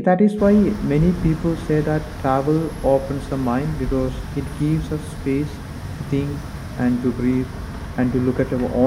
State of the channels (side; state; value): both; identical; correlation 1.00